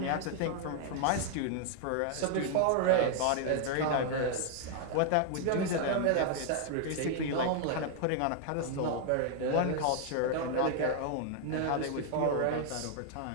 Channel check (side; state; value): both; different; correlation 0.00